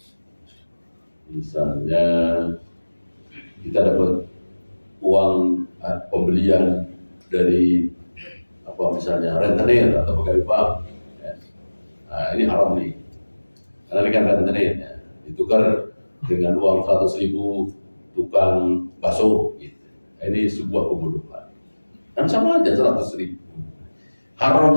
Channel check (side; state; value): both; inverted; correlation -1.00